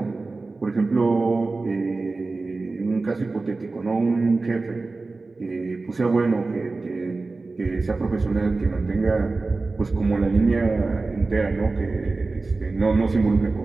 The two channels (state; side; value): quieter; left; 3.6 dB